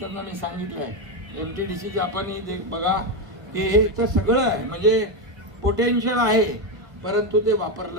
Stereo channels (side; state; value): left; late; 1.5 ms